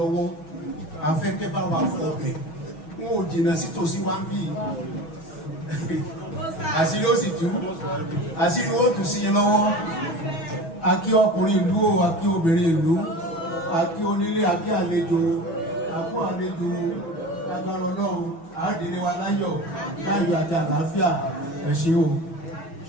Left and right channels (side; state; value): right; late; 6.2 ms